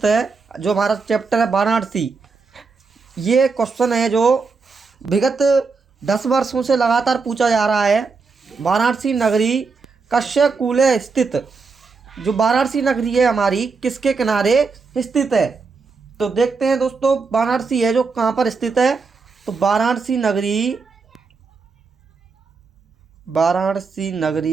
है, जो हमारा चैप्टर है वाराणसी। ये क्वेश्चन है जो विगत 10 वर्षों से लगातार पूछा जा रहा है। वाराणसी नगरी कस्य कूले स्थित। जो वाराणसी नगरी है हमारी किसके किनारे स्थित है? तो देखते हैं दोस्तों, वाराणसी है जो कहाँ पर स्थित है। तो वाराणसी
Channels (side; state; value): left; quieter; 4.6 dB